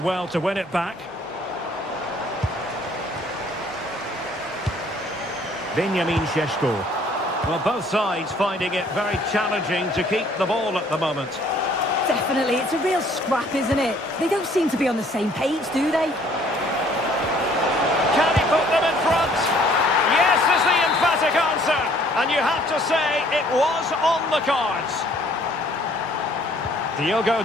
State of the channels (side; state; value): both; normal; correlation 0.59